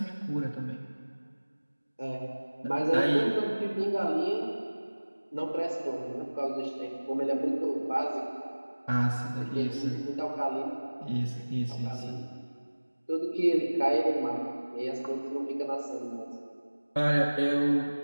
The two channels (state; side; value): inverted; both; correlation -1.00